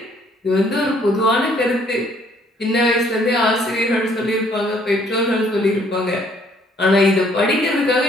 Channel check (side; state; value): both; normal; correlation 0.63